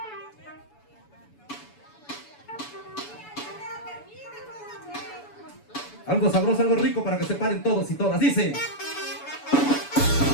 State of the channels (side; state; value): right; late; 7.0 ms